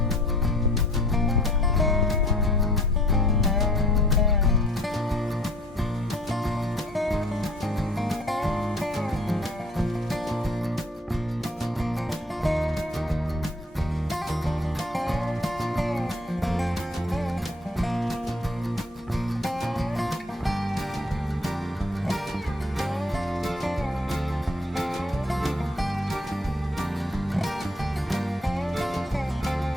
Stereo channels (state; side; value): normal; both; correlation 0.55